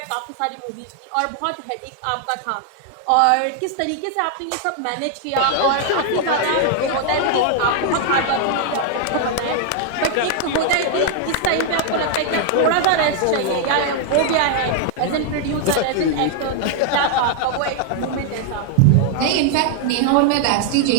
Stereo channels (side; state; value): both; different; correlation 0.00